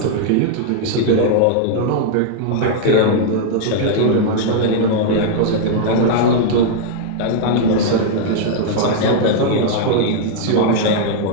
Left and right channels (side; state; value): both; different; correlation -0.01